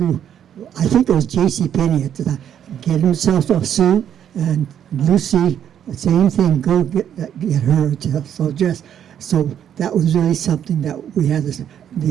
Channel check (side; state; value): left; quieter; 9.5 dB